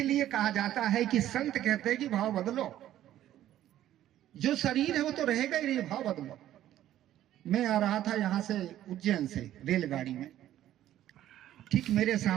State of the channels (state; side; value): quieter; left; 12.6 dB